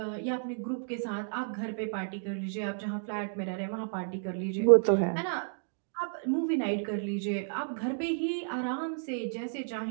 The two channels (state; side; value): silent; left; digital silence